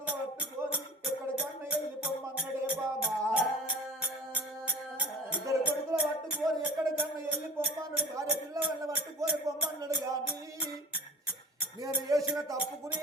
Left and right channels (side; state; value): both; normal; correlation 0.40